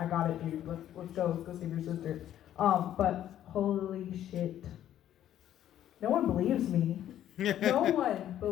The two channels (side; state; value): right; quieter; 11.5 dB